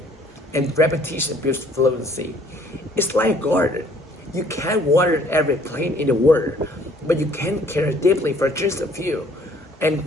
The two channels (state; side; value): normal; both; correlation 0.59